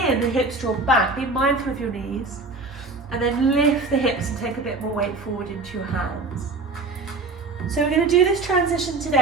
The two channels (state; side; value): quieter; left; 3.6 dB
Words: in, the hips draw back. Be mindful of your knees. And then lift the hips and take a bit more weight forward into your hands. So we're going to do this transition